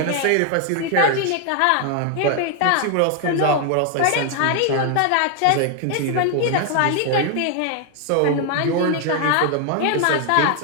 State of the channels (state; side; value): different; both; correlation 0.00